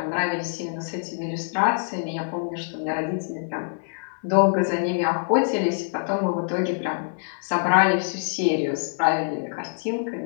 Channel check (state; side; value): silent; right; 58 dB below the other